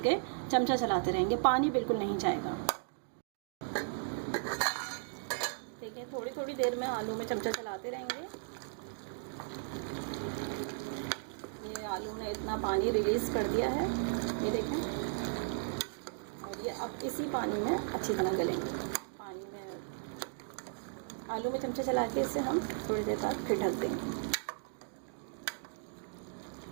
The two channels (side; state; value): left; silent; digital silence